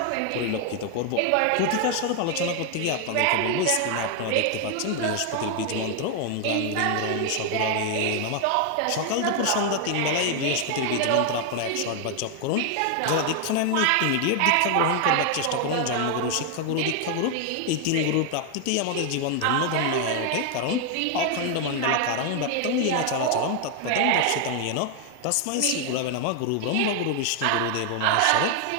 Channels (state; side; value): different; both; correlation 0.00